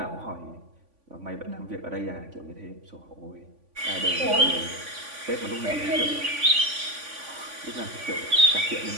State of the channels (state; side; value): late; left; 3.5 ms